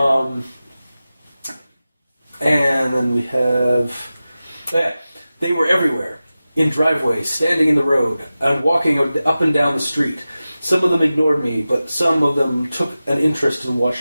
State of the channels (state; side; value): inverted; both; correlation -0.95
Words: And then we have they were everywhere. In driveways, standing in the road, and walking up and down the street. Some of them ignored me, but some of them took an interest and